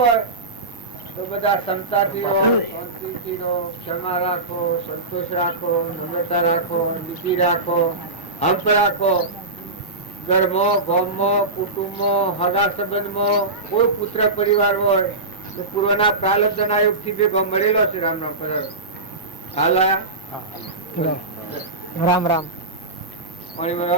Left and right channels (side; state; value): left; quieter; 3.2 dB